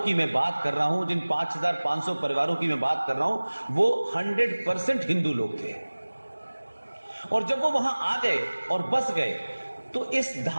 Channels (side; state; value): both; inverted; correlation -1.00